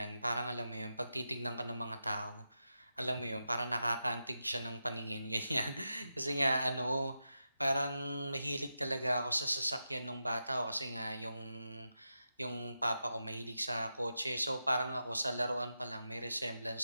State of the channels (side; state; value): both; inverted; correlation -0.88